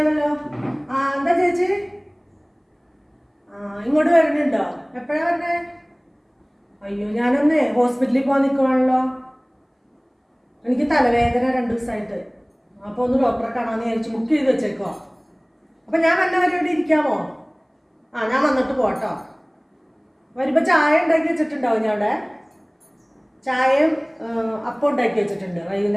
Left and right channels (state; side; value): identical; both; correlation 1.00